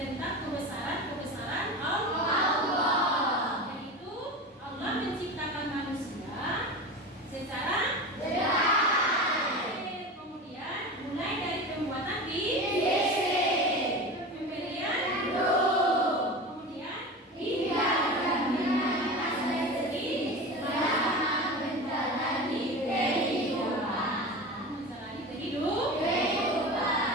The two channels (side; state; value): both; normal; correlation 0.29